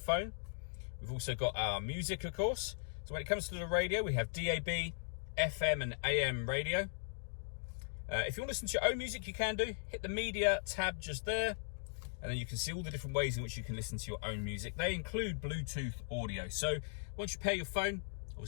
We've also got our music, of course. So when it comes to the radio, we have DAB, FM and AM radio. If you want to listen to your own music, you can do. Hit the media tab just there, and then you can see all the different ways in which you can listen to your own music. They include Bluetooth audio. So once you pair your phone,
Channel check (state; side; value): silent; right; digital silence